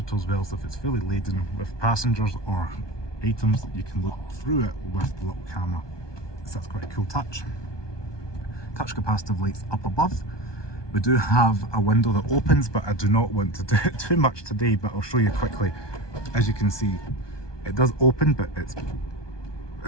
as well, so if it's fully laden with passengers or items, you can look through it with the little camera. So that's quite a cool touch. Touch capacitive lights up above. We do have a window that opens, but I do not want to do it too much today, but I'll show you quickly. As you can see, it does open, but it's,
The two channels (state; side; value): late; right; 1.2 ms